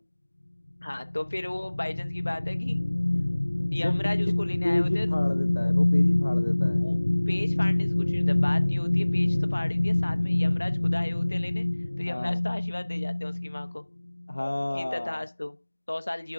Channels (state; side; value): inverted; both; correlation -1.00